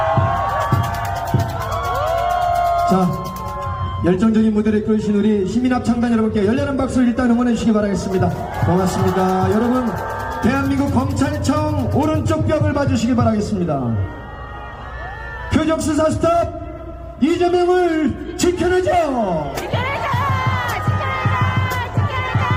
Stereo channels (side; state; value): both; identical; correlation 1.00